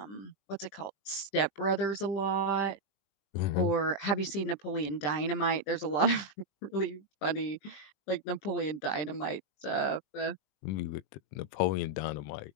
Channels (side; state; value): right; late; 20 ms